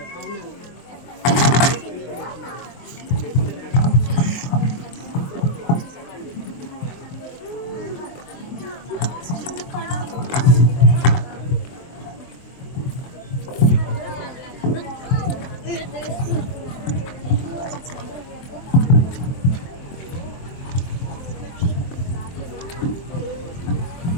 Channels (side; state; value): right; late; 23 ms